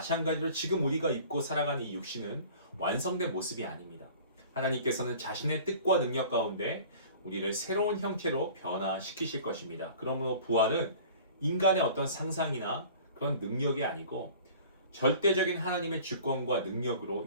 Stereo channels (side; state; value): both; inverted; correlation -0.45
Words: 지금 우리가 입고 살아가는 이 육신은 완성된 모습이 아닙니다. 하나님께서는 자신의 뜻과 능력 가운데 우리를 새로운 형체로 변화시키실 것입니다. 그러므로 부활은 인간의 어떤 상상이나 그런 능력이 아니고 절대적인 하나님의 주권과 능력으로